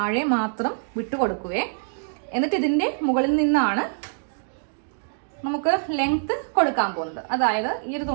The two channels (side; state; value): left; silent; digital silence